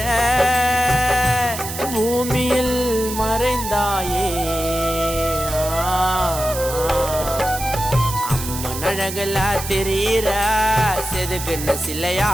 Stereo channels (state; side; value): noise; right; hiss, 8 dB below the sound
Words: பூமியில் மறைந்தாயே அம்மன் அழகுல தெரியிற செதுக்குன்னு